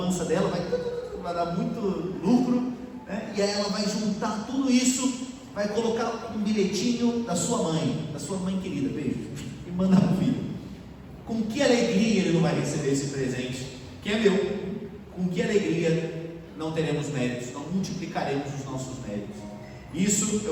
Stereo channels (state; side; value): identical; both; correlation 1.00